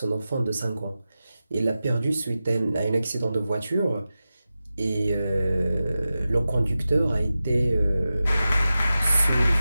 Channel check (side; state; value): both; inverted; correlation -0.93